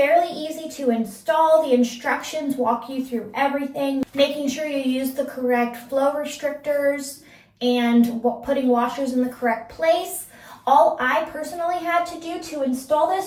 easy to install. The instructions walk you through everything, making sure you use the correct flow restrictors and putting washers in the correct place. All I personally had to do to install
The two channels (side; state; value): both; identical; correlation 1.00